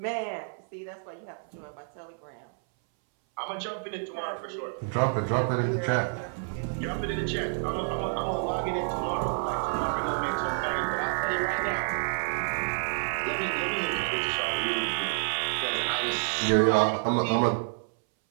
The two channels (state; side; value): silent; left; 59 dB below the other